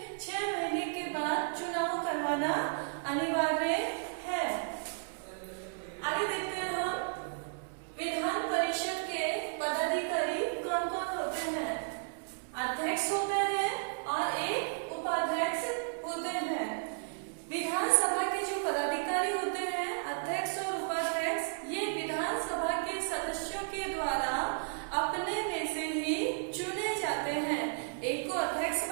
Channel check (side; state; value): left; silent; digital silence